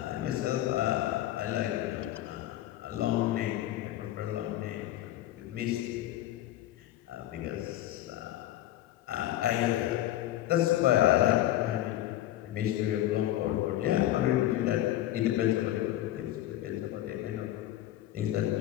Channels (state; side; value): quieter; right; 14.0 dB